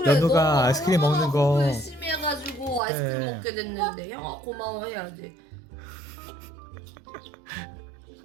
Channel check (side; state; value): left; drops out; at 2.8 s